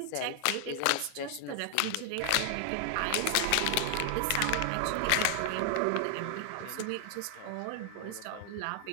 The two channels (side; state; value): both; different; correlation 0.00